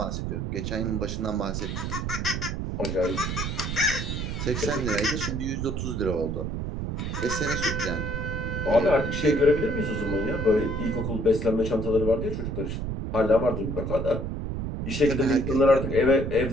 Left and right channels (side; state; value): right; noise; rumble, 3 dB below the sound